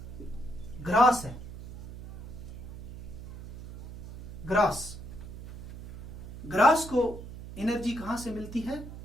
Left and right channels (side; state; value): right; noise; hum, 11 dB below the sound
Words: ग्रास है। ग्रास को एनर्जी कहां से मिलती है?